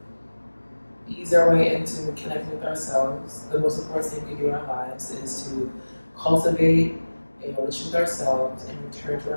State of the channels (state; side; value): inverted; both; correlation -1.00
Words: ease our way into connecting with ourselves. The most important thing we can do in our lives is to cultivate a relationship with ourselves and return to